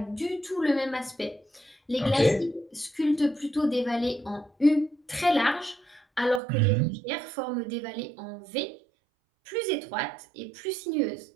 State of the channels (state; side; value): drops out; left; at 6.4 s